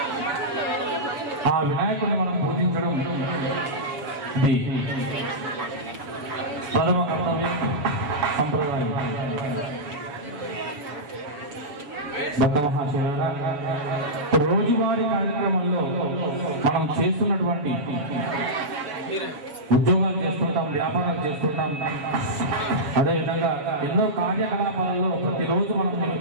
ఆ వినాయకుడిని మనం పూజించడం ఇది ప్రథమ కర్తవ్యం, సంప్రదాయం. భక్త మహాశయులారా, రోజువారీ కార్యక్రమంలో మనం చేస్తున్నటువంటి ఉద్యోగాలు చేస్తుంటాం, వ్యాపారాలు చేస్తుంటాం, అదేవిధంగా ఎన్నో కార్యకలాపాలలో ప్రతిరోజు మనం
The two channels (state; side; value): late; left; 7.0 ms